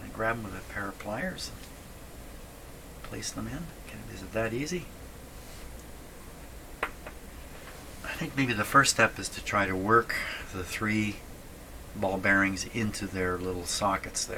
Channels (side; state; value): both; identical; correlation 1.00